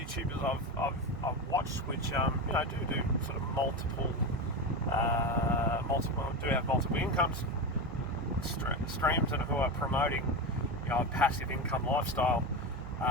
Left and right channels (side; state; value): both; normal; correlation 0.19